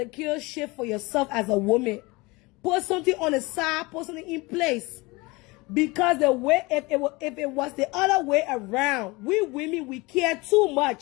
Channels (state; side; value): quieter; right; 24.0 dB